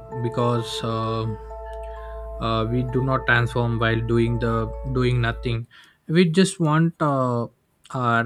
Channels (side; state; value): both; identical; correlation 1.00